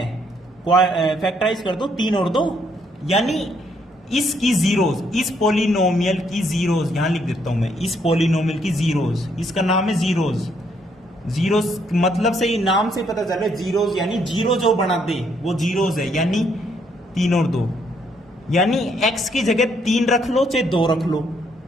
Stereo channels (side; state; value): both; normal; correlation 0.71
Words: फैक्टराइज कर दो, 3 और 2, यानी इसकी जीरोस, इस पॉलिनोमियल की जीरोस यहां लिख देता हूं मैं, इस पॉलिनोमियल की जीरोस, इसका नाम है जीरोस। जीरोस मतलब से ही नाम से पता चल रहा है जीरोस, यानी जीरो जो बना दे वो जीरोस है, यानी 3 और 2, यानी एक्स की जगह 3 रख लो चाहे 2 रख लो,